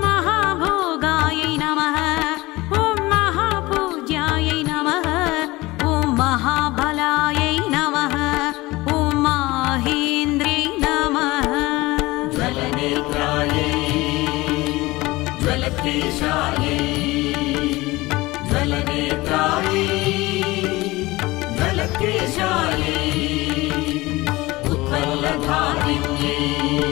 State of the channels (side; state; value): right; quieter; 20.6 dB